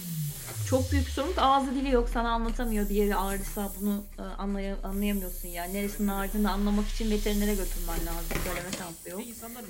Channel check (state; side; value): identical; both; correlation 1.00